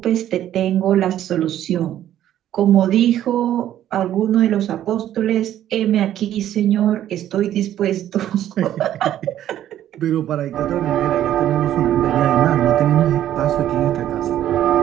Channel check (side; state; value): left; quieter; 11.8 dB